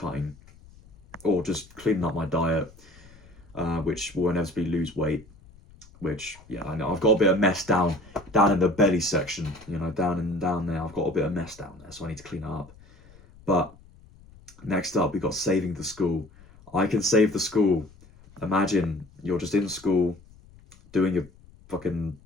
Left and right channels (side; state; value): left; noise; rumble, 24 dB below the sound